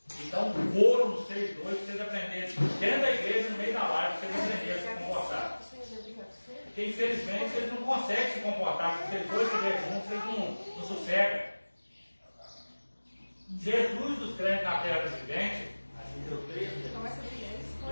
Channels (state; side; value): inverted; both; correlation -1.00